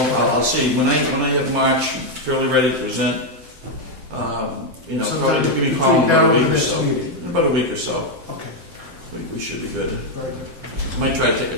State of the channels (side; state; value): left; late; 7.8 ms